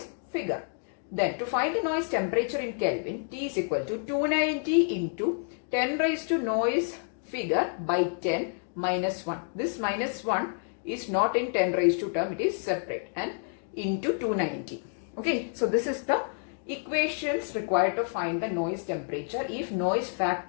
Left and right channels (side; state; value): right; silent; 59 dB below the other